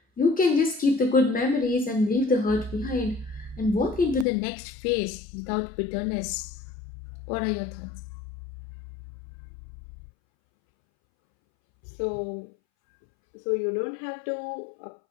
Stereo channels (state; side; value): drops out; right; at 4.2 s